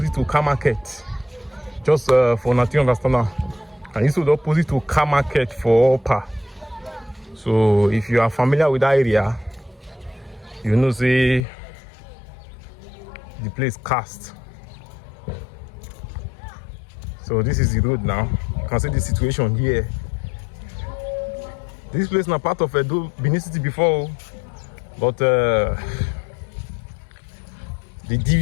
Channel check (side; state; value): right; drops out; at 11.5 s